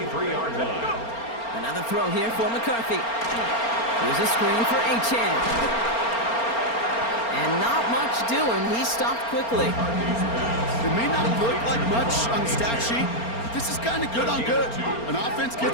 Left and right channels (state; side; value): late; right; 4.3 ms